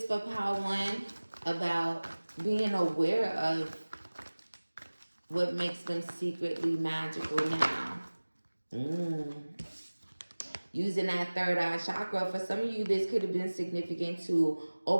for Power One about being aware of what makes them secretly magical now. Using that third eye chakra. For some of you, this could have been significant to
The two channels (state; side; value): inverted; both; correlation -1.00